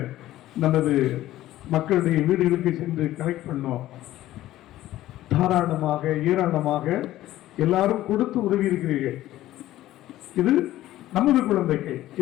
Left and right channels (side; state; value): right; quieter; 14.6 dB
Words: நமது மக்களுடைய வீடுகளுக்கு சென்று கலெக்ட் பண்ணோம். தாராளமாக ஏராளமாக எல்லாரும் கொடுத்து உதவி இருக்கிறீர்கள். இது நமது குழந்தைகள்